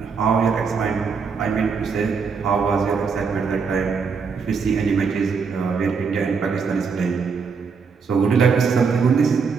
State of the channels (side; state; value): left; quieter; 5.5 dB